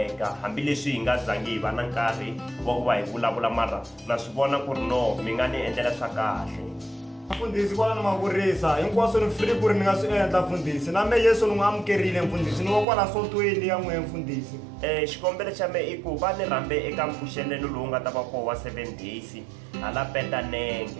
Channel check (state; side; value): drops out; left; at 12.9 s